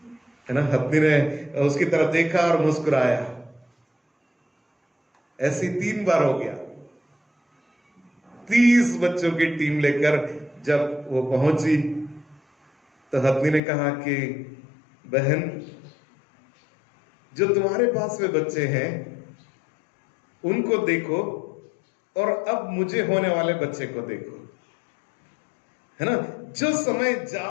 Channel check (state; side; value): drops out; right; at 13.6 s